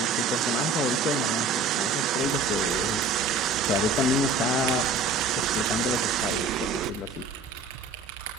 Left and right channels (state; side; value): quieter; left; 3.7 dB